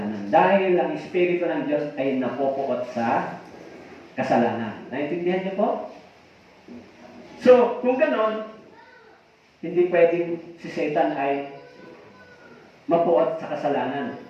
Dahil ang Espiritu ng Diyos ay napupuot sa kasalanan. Naintindihan niyo po? So, kung ganon, hindi pwedeng si Satan ay mapuot sa kasalanan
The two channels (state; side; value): identical; both; correlation 1.00